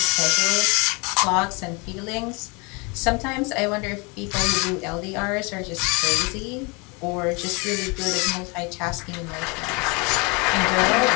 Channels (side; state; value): right; quieter; 29.6 dB